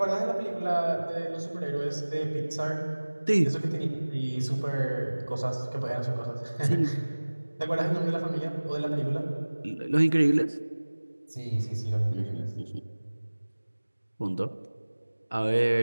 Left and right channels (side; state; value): both; inverted; correlation -1.00